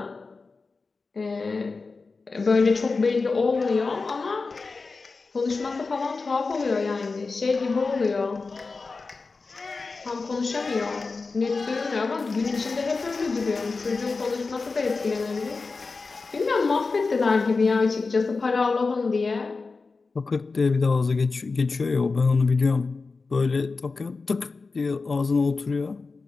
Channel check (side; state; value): right; quieter; 4.1 dB